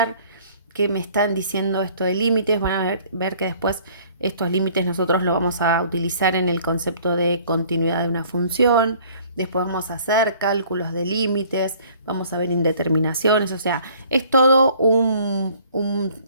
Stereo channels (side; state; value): both; inverted; correlation -0.55